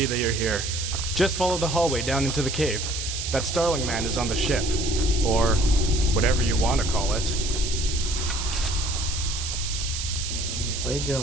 that you're here. Just follow the hallway down into the cave. That Starling man is on the ship. Or whatever you want to call it.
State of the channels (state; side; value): noise; right; hiss, 5 dB below the sound